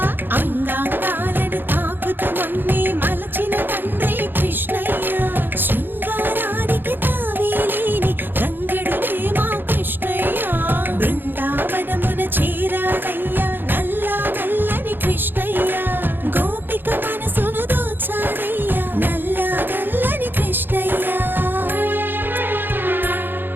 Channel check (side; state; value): left; late; 0.097 ms